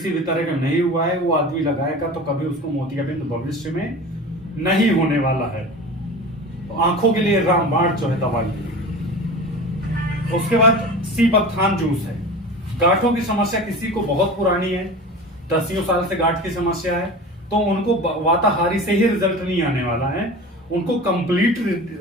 भी तरह का नहीं हुआ है, वो आदमी लगाएगा तो कभी उसको मोतियाबिंद भविष्य में नहीं होने वाला है। तो आंखों के लिए रामबाण जो है दवाई। उसके बाद सीबकथान जूस है। गांठों की समस्या किसी को बहुत पुरानी है, 10 साल से गांठ की समस्या है, तो उनको वाताहारी से ही रिजल्ट नहीं आने वाला है, उनको कंप्लीट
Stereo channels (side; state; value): both; normal; correlation 0.34